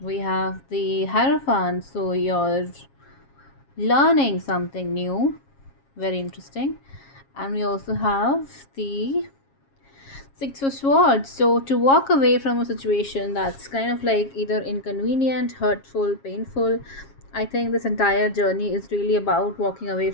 have the Hierophant, so you're learning something new, very interesting. And we also have the Six of Swords. So to walk away from a situation that's kind of like either inconvenient, hurtful, painful. I think this entire journey is really about walking away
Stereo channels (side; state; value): right; late; 7.3 ms